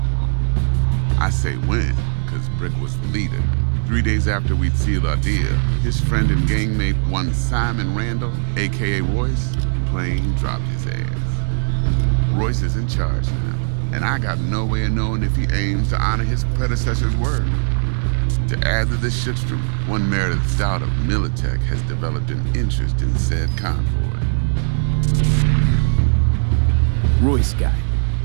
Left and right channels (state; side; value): silent; left; digital silence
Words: I say when, because Brick was the leader. 3 days after we'd sealed our deal, his friend and gangmate, one Simon Randall, aka Royce, plain dropped his ass. Royce is in charge now, and I got no way of knowing if he aims to honor his predecessor's word. To add to this shitstorm, one Meredith Stout of Militech has developed an interest in said convoy. Royce guy.